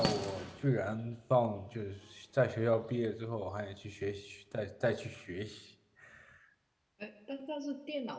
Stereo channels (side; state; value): both; identical; correlation 1.00